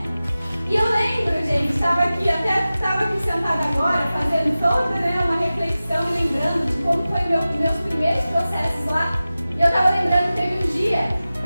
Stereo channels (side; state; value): both; inverted; correlation -0.96